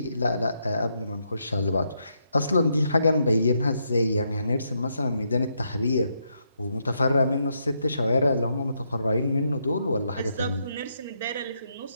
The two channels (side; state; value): both; inverted; correlation -0.78